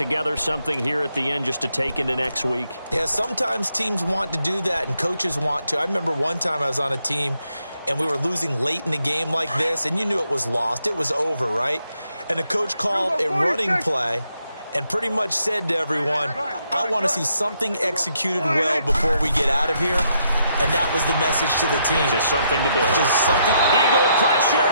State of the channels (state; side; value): inverted; both; correlation -0.77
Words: something here at the end just to take into next week? Yeah, sometimes teams want to do that and coaches want to. I remember one time I was on a team and we were losing late in the game like this, and you knew it was lost. It was over, right? And the coach called a running play and pretty much said to everyone, I want to see something executed well before we get out of here. And that was the message to the team. Just something to build. Just something. Eagle pressure,